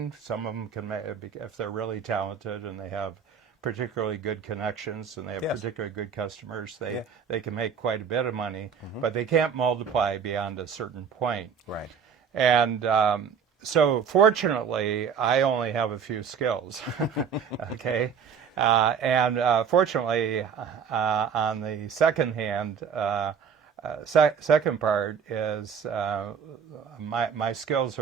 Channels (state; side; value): quieter; left; 6.9 dB